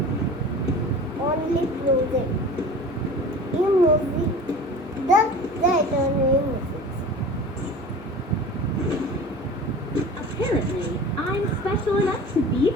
Only project emoji the right on emoji. Apparently, I'm special enough to be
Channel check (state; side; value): normal; both; correlation 0.38